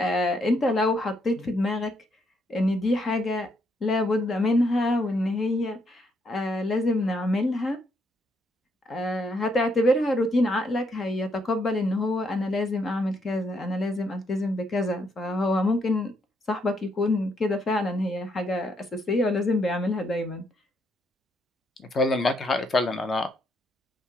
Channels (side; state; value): both; normal; correlation 0.74